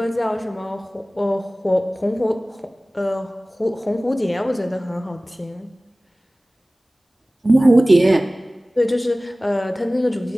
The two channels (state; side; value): normal; both; correlation 0.98